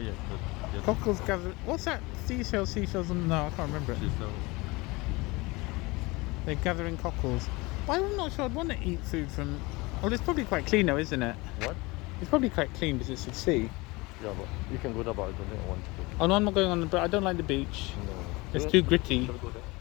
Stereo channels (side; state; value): right; quieter; 23.9 dB